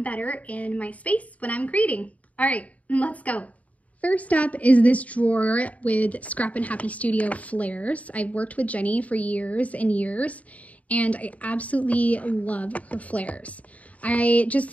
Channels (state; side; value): late; right; 0.069 ms